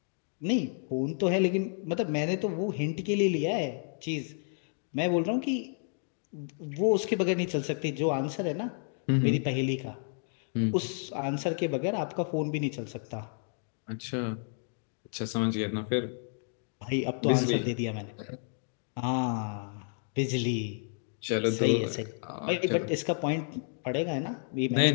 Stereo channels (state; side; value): silent; right; 57 dB below the other